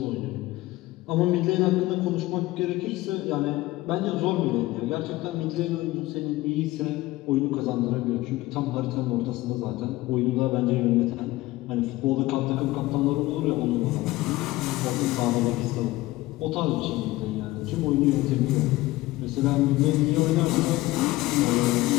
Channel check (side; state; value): right; quieter; 18.3 dB